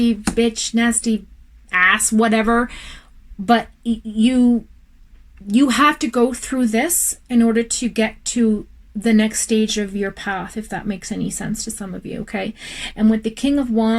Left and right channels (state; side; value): identical; both; correlation 1.00